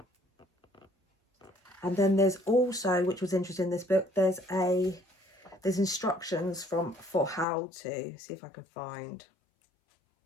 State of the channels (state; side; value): drops out; right; at 7.5 s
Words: And then there's also, which was interesting in this book, there's instructions for how to see if I can find